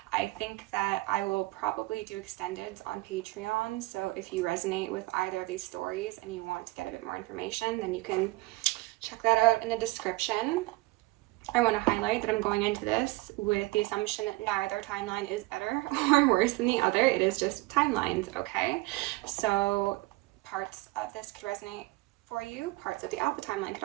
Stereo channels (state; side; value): quieter; left; 21.8 dB